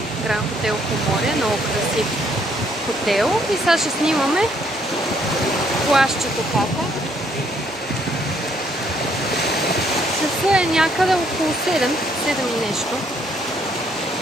Гранд Хотел Поморие, много красив хотел. И сега ще снимаме плажчето пака. Часа е някъде около 7 и нещо.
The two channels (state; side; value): normal; both; correlation 0.68